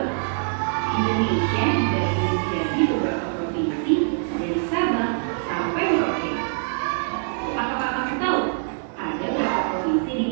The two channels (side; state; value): left; silent; digital silence